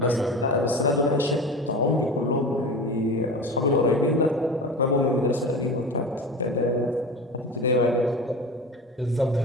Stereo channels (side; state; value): both; normal; correlation 0.31